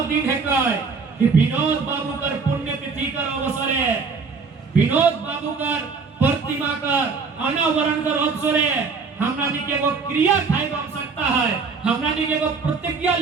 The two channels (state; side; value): quieter; left; 4.9 dB